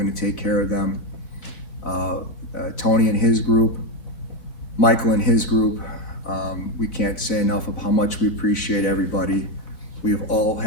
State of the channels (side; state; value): right; late; 4.0 ms